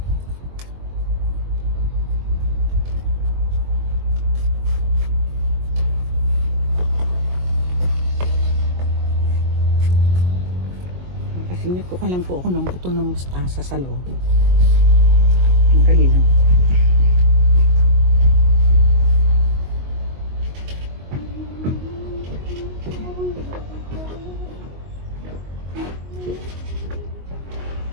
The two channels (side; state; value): left; late; 22 ms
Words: Sinyot ko lang po ako ng buto ng mustasa sa loob. Ang dali lang.